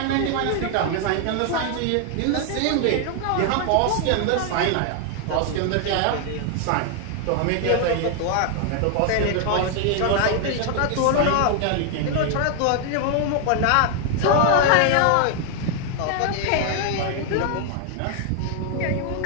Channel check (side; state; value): both; different; correlation 0.00